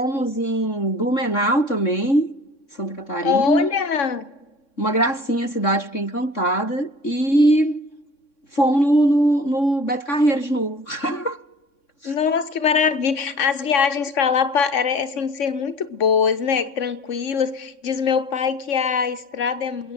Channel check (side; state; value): right; late; 3.6 ms